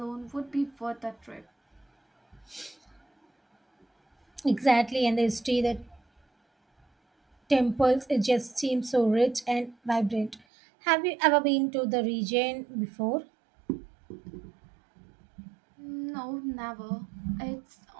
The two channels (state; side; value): drops out; left; at 10.4 s